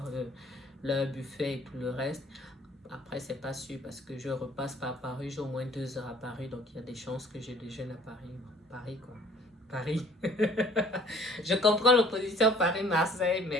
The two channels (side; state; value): both; normal; correlation 0.54